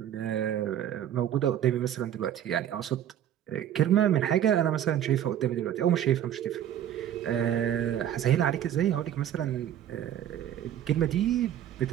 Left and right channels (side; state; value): left; quieter; 10.7 dB